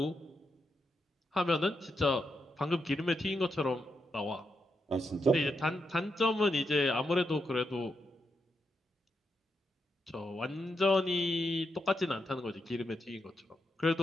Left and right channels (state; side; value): normal; both; correlation 0.84